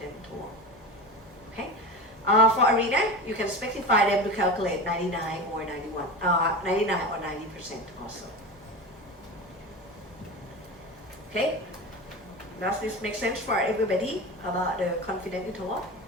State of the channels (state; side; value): normal; both; correlation 0.27